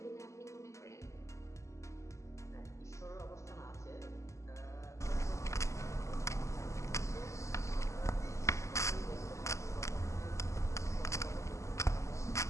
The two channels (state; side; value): late; right; 0.14 ms